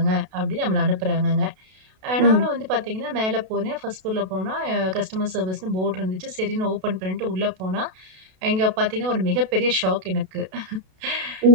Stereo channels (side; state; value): left; late; 32 ms